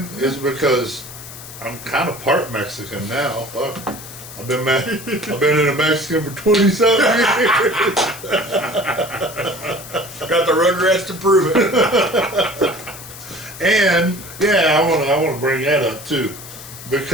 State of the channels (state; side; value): noise; left; hiss, 14 dB below the sound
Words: it's because I'm kind of part Mexican now. Fuck. I've been in a Mexican for 20-something years. Got the Rugrats to prove it. And yeah, I want to bring that up too,